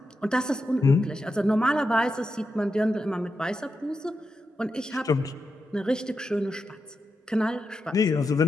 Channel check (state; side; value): normal; both; correlation 0.88